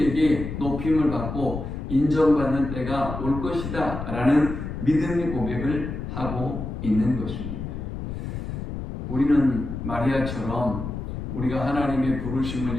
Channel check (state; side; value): noise; left; rumble, 6 dB below the sound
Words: 높임을 받고 인정받는 때가 올 것이다 라는 믿음의 고백을 하고 있는 것입니다. 우리는 마리아처럼 우리가 하나님의 부르심을